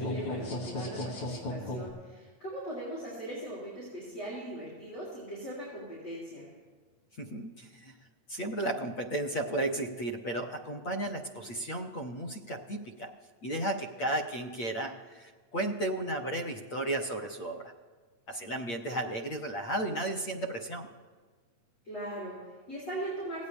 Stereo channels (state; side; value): late; right; 8.7 ms